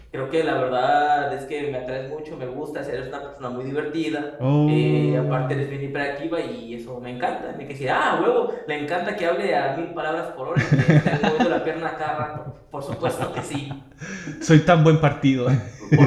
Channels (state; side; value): identical; both; correlation 1.00